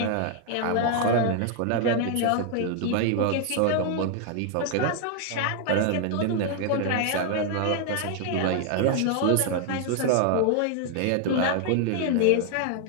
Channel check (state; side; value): different; both; correlation 0.00